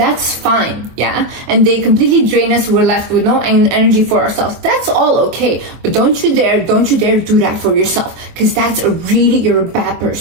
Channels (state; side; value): late; left; 24 ms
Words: fine, yeah? And they completely drain us, we're left with no energy for ourselves. That's all okay. But don't you dare do that for yourself. Because that's you're a bad